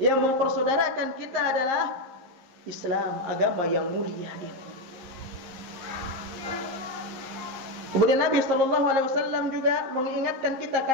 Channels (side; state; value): left; late; 11 ms